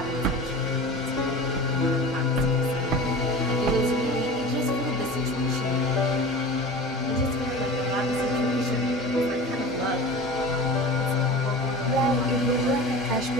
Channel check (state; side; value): normal; both; correlation 0.35